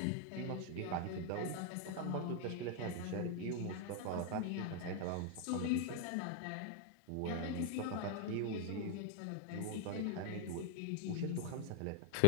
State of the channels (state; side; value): different; both; correlation 0.00